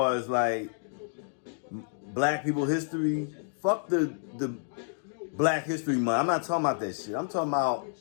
as like black people history, fuck the Black History Month. I'm not talking about that shit. I'm talking about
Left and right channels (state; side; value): silent; right; digital silence